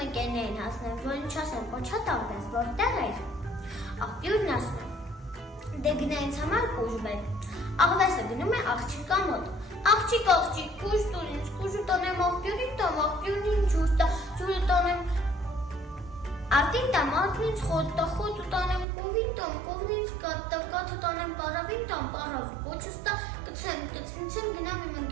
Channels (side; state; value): left; drops out; at 18.9 s